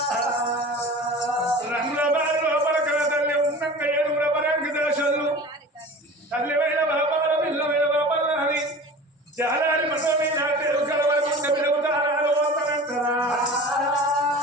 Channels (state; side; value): normal; both; correlation 0.38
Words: రంగుల బారి లోపల కల తల్లి ఉన్నంగా ఏడుగుల పరంగి దశలు తల్లివైన బాపాల పిల్లమైన బాపాల అని జాలారి మనో మీద తెలుగు కలవకుంట పిలుగుతారాలు వస్తానంటారా